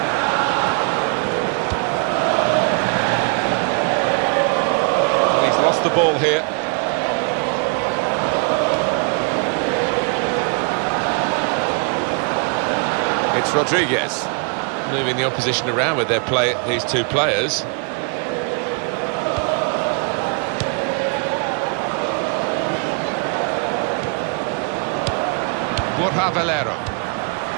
Well, he's lost the ball here. It's Rodriguez moving the opposition around with these two players. Valero.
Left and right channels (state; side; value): quieter; left; 37.4 dB